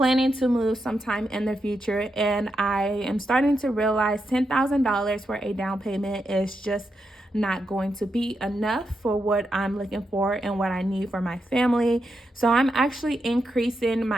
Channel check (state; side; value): normal; both; correlation 0.85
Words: to move sometime in the future. And I am starting to realize $10,000 for a down payment is just not going to be enough for what I'm looking for and what I need for my family. So I'm actually increasing